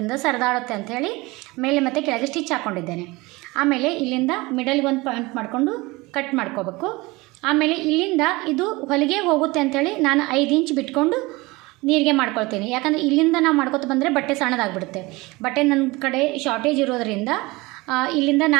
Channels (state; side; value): quieter; left; 22.7 dB